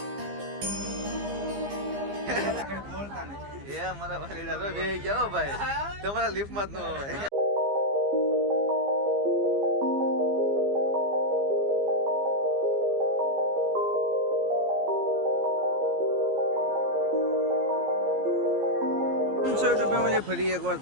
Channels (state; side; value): late; left; 15 ms